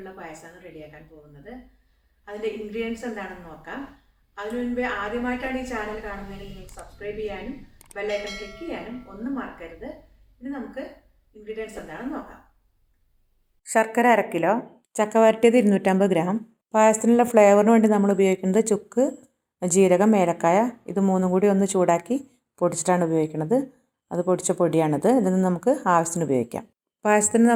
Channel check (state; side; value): identical; both; correlation 1.00